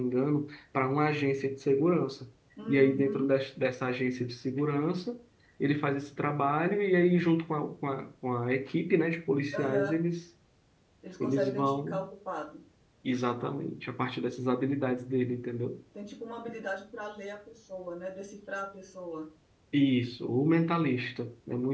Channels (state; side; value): identical; both; correlation 1.00